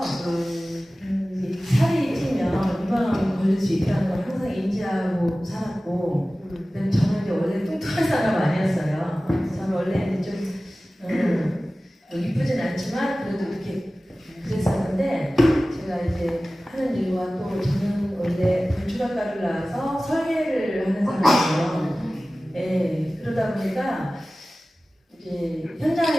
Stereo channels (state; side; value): normal; both; correlation 0.97